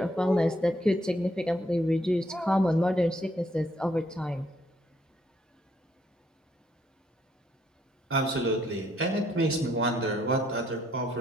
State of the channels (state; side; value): normal; both; correlation 0.71